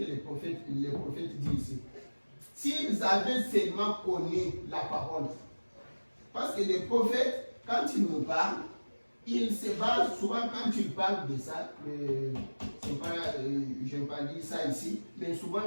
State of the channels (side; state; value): both; inverted; correlation -1.00